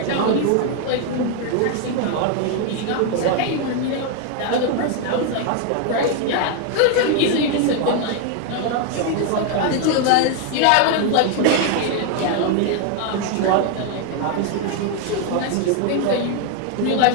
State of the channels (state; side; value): different; both; correlation 0.01